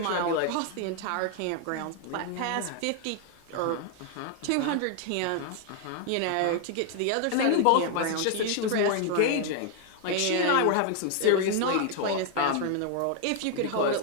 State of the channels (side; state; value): both; different; correlation 0.00